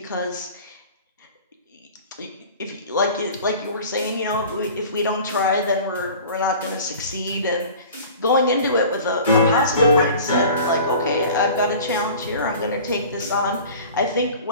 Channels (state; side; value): inverted; both; correlation -0.42